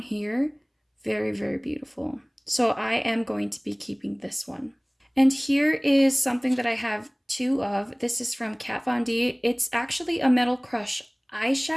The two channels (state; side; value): identical; both; correlation 1.00